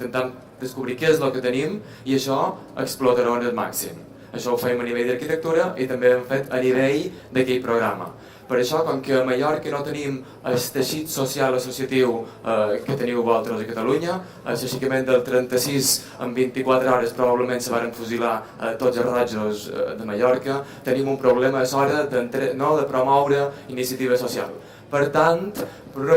descobrir què és el que tenim i això explotar-ho al màxim. Això ho fem a nivell d'arquitectura i també hem fet a nivell d'aquell programa. Per això, com que a Mallorca no tenim el teixit social associatiu que teniu vosaltres a Catalunya, l'aixecament del 36 en 24 hores probablement se van fusilar tots els rojos de Mallorca, tenim un problema a l'hora de promoure iniciativa social. Per tant, per una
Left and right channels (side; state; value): both; identical; correlation 1.00